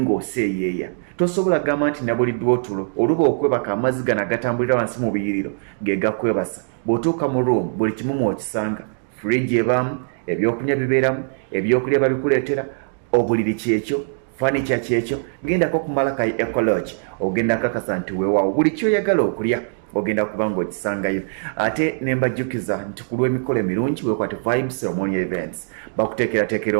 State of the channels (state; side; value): silent; left; digital silence